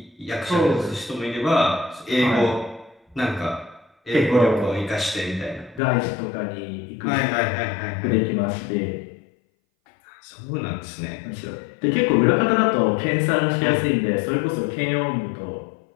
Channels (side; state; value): right; drops out; at 5.8 s